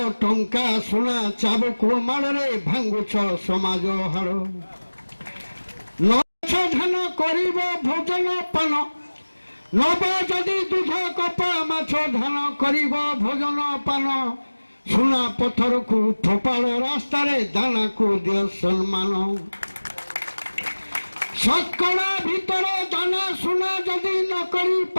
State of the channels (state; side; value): inverted; both; correlation -1.00